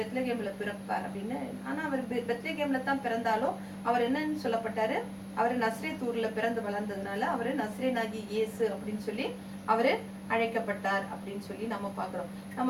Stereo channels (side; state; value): both; identical; correlation 1.00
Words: பிறப்பார் அப்படின்னு. ஆனா அவர் பெத்லகேம்ல தான் பிறந்தாலும் அவர் என்னன்னு சொல்லப்பட்டாரு, அவரு நஸ்ரேத்தூர்ல பிறந்து வளர்ந்ததுனால அவரு நஸ்ரேனாகி இயேசு அப்படின்னு சொல்லி அவரு அழைக்கப்பட்டார் அப்படின்னு சொல்லி நம்ம பாக்குறோம்.